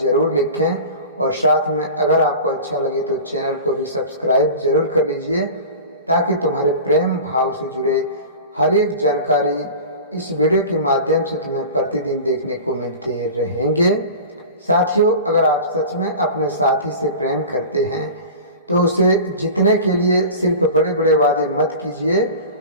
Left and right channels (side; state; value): both; inverted; correlation -0.35